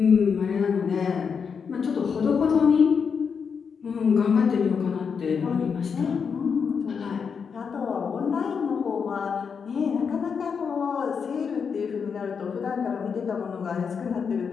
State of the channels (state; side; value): quieter; right; 6.2 dB